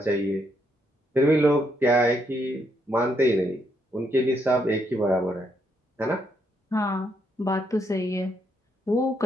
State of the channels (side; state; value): both; normal; correlation 0.76